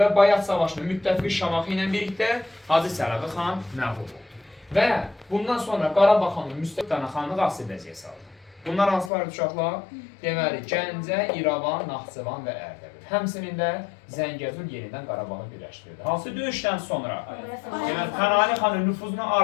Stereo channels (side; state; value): right; drops out; at 9.1 s